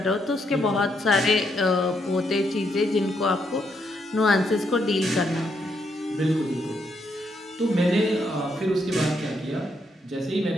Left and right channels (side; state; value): both; normal; correlation 0.77